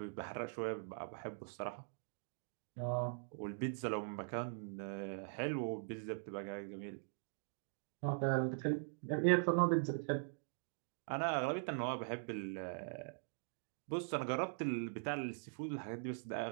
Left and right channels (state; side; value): silent; left; digital silence